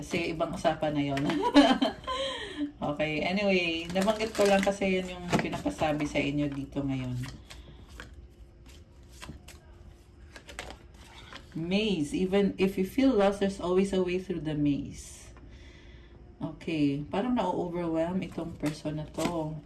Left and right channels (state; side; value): identical; both; correlation 1.00